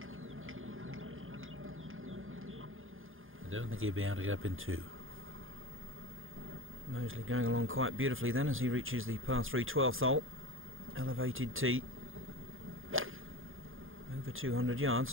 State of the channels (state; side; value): late; left; 0.59 ms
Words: I don't think he'll be able to get up in 2. Moseley going along quite beautifully then as he reaches the par 3 12th hole. Elevated tee. Over 200 yards,